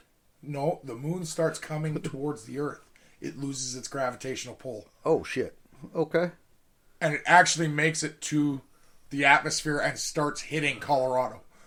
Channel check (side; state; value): both; identical; correlation 1.00